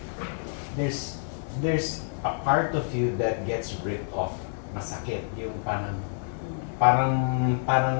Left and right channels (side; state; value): right; silent; digital silence